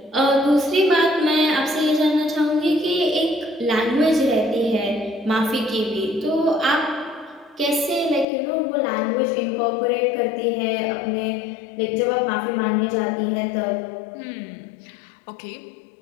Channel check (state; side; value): drops out; right; at 8.2 s